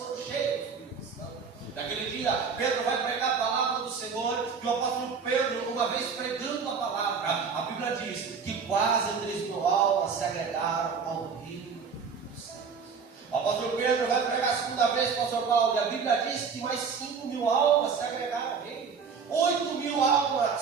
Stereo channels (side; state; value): left; quieter; 5.8 dB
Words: cheios do Espírito Santo. Naquele dia, Pedro vai pregar a palavra do Senhor, e o apóstolo Pedro, uma vez pregando a palavra, a Bíblia diz que quase 3.000 almas se agregaram ao reino dos céus. O apóstolo Pedro vai pregar a segunda vez para o apóstolo Paulo, e a Bíblia diz que mais 5.000 almas se agregaram ao reino. 8.000